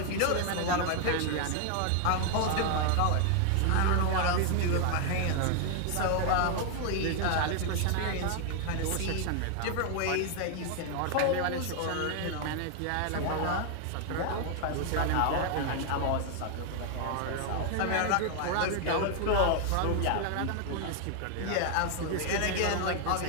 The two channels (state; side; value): different; both; correlation 0.00